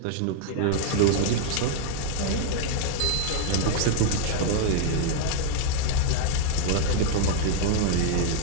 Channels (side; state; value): both; different; correlation 0.00